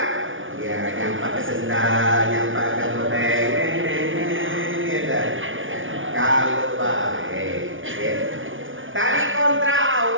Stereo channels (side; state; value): left; late; 0.57 ms